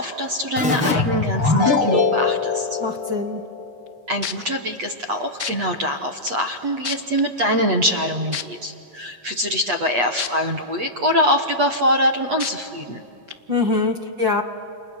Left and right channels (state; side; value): late; left; 8.2 ms